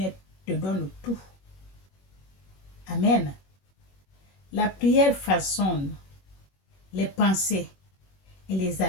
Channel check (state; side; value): late; right; 21 ms